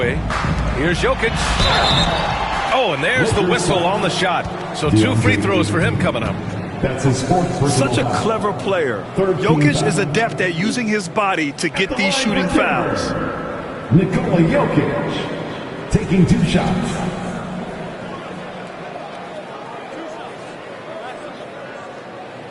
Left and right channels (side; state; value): both; identical; correlation 1.00